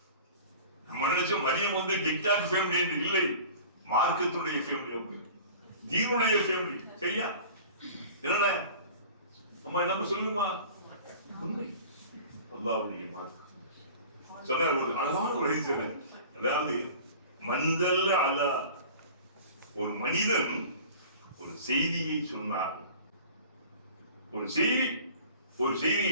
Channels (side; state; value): both; inverted; correlation -0.42